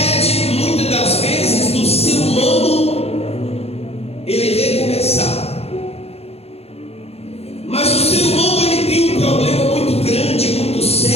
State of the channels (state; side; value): late; right; 0.29 ms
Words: muitas das vezes, do ser humano ele recomeçar. Mas o ser humano ele tem um problema muito grande, muito